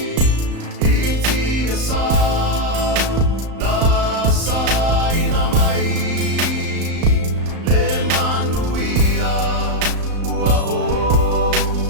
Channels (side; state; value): left; late; 35 ms